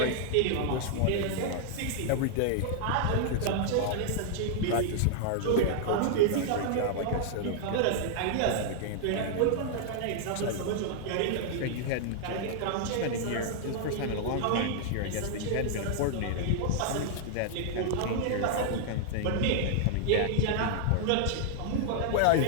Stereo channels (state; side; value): different; both; correlation -0.01